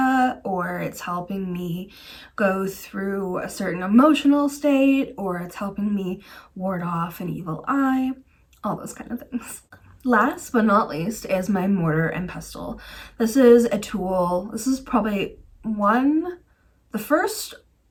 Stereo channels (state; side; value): identical; both; correlation 1.00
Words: or it's helping me go through a certain emotional state, or it's helping me ward off an evil eye, all those kind of things. Last but not least is my mortar and pestle. This is a tool. This is probably the first